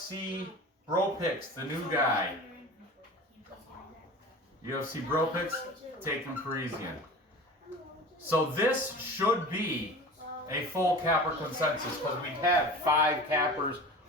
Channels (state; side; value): normal; both; correlation 0.36